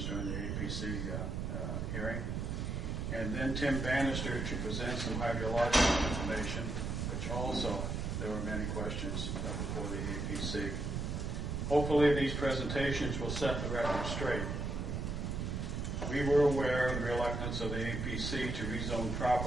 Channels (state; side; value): noise; right; rumble, 2 dB below the sound